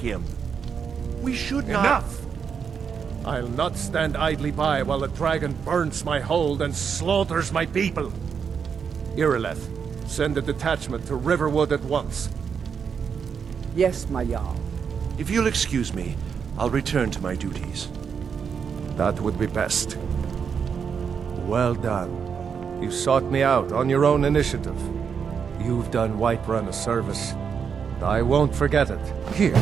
We should not... Enough! I'll not stand idly by while the dragon burns my hold and slaughters my people. Irileth, send a detachment to Riverwood at once. Yes, my Jarl. If you'll excuse me, I'll return to my duties. That would be best. Well done. You sought me out on your own initiative. You've done Whiterun a service. I won't forget it. Here,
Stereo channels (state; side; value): quieter; left; 6.7 dB